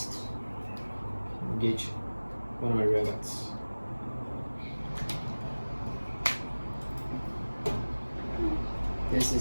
Engage one of my rear guards. This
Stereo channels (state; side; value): inverted; both; correlation -1.00